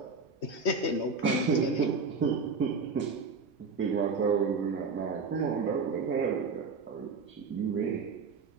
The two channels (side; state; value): left; quieter; 4.5 dB